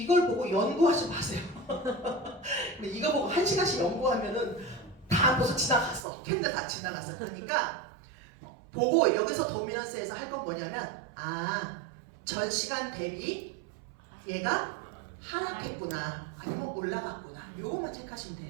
보고 연구하지 마세요. 이거 보고 1시간씩 연구하면은 다 벌써 지나갔어. 캔들 다 지나갔어. 그러니까 보고 여기서 도미넌스에서 할 건 뭐냐면 전 시간 대비 얘가 하락했구나 아니면 올라갔구나 요것만 체크하시면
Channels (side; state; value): left; drops out; at 6.1 s